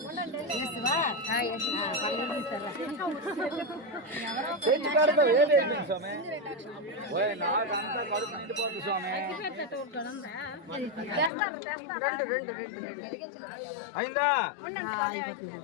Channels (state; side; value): drops out; right; at 11.3 s